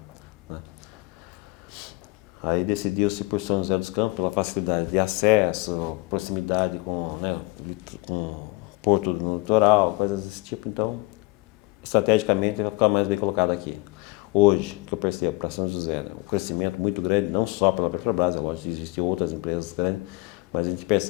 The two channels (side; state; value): right; quieter; 23.5 dB